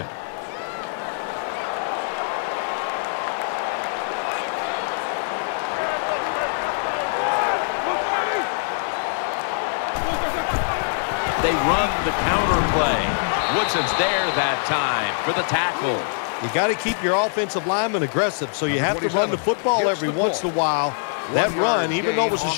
They run the counter play. Woodson's there that time for the tackle. You got to keep your offensive lineman aggressive, so you have to run the football every once in a while. That run, even though it was a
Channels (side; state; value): right; silent; digital silence